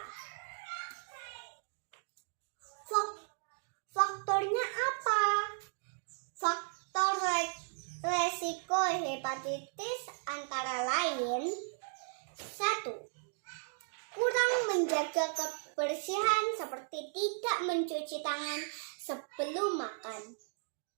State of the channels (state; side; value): silent; left; digital silence